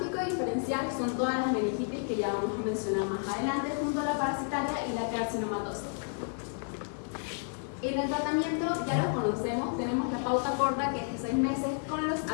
diferencial son todas las meningitis que ya vamos a mencionar más adelante, junto a la parasitaria y la carcinomatosa. En el tratamiento ya lo conocemos, tenemos la pauta corta, que es de 6 meses, con los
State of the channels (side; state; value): right; silent; 57 dB below the other